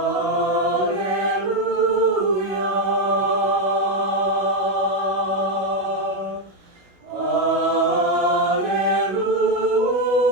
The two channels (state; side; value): late; left; 16 ms